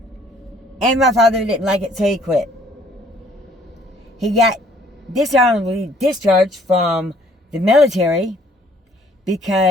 And my father didn't like it, so he quit. He got dishonorably discharged from the military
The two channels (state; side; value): normal; both; correlation 0.60